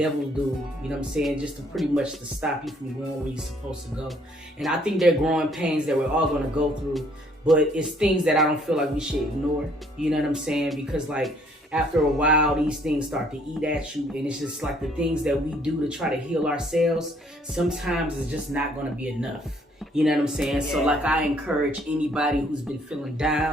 do, you know what I'm saying? Just to pretty much to stop you from going where you're supposed to go. And I think they're growing pains that we're all going to go through, but it's things that I don't feel like we should ignore, you know what I'm saying? Because like after a while, these things start to eat at you, and it's just like the things that we do to try to heal ourselves, sometimes it's just not going to be enough. You know what I'm saying? Yeah. So like I encourage anybody who's been feeling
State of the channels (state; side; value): normal; both; correlation 0.63